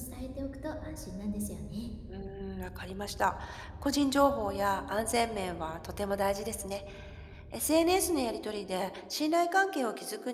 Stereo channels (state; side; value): identical; both; correlation 1.00